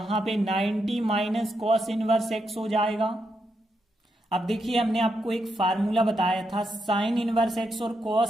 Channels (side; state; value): both; normal; correlation 0.82